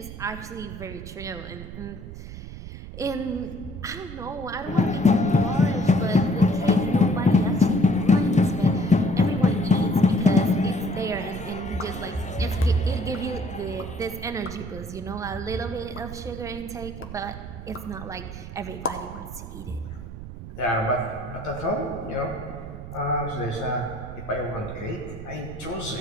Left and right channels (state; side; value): noise; right; rumble, 11 dB below the sound